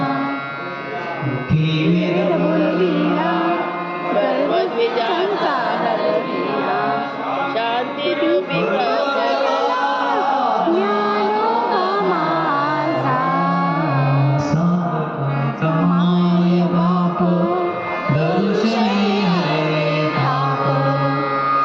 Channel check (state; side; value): identical; both; correlation 1.00